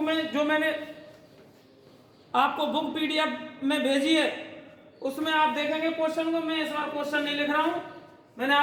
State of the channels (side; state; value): both; identical; correlation 1.00